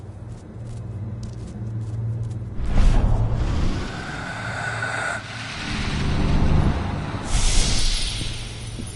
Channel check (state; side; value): identical; both; correlation 1.00